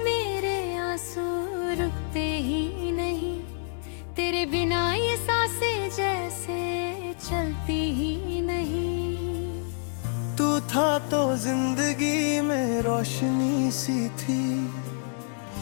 मेरे आंसू रुकते ही नहीं, तेरे बिना ये सांसें जैसे चलती ही नहीं। तू था तो जिंदगी में रोशनी सी थी,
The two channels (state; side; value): silent; right; digital silence